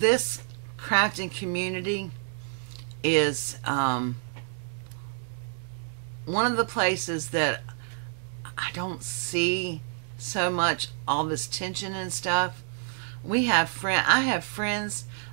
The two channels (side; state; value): left; silent; digital silence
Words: crafting community is one of the places that I don't see so much all this tension and stuff. I have friends